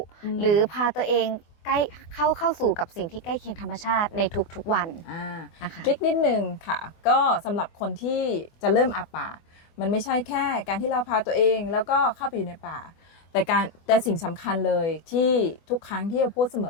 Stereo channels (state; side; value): late; right; 24 ms